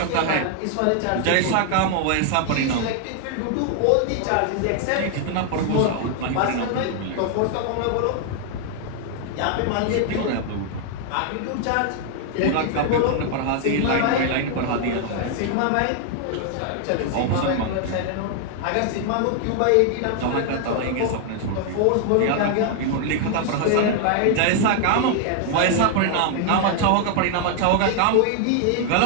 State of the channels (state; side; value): different; both; correlation 0.00